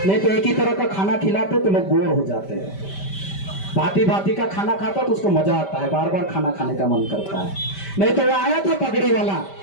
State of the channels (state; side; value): late; right; 5.1 ms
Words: नहीं तो एक ही तरह का खाना खिलाते तो लोग बोर हो जाते हैं। भांति भांति का खाना खाता तो उसको मजा आता है, बार बार खाना खाने का मन करता है। नहीं तो वो आया था पगड़ी वाला,